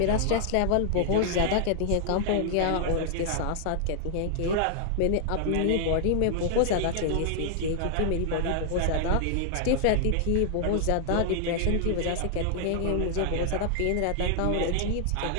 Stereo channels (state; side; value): different; both; correlation 0.00